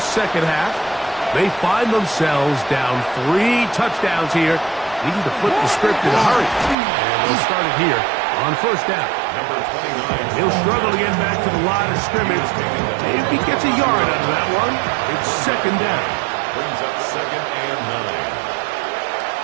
second half. They find themselves down 3 touchdowns here, needing to flip the script in a hurry. And they'll start it here on first down. He'll struggle to get back to the line of scrimmage. If he gets a yard out of that one, it's second down. Brings up 2nd and 9.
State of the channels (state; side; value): drops out; left; at 6.8 s